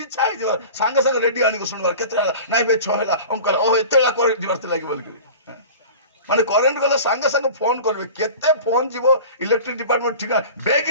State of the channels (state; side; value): inverted; both; correlation -0.37